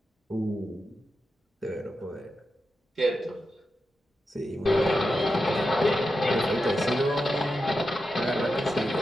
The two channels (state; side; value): normal; both; correlation 0.89